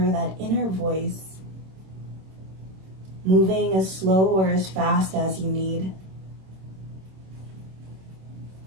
that inner voice, moving as slow or as fast as you need.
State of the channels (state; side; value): late; left; 26 ms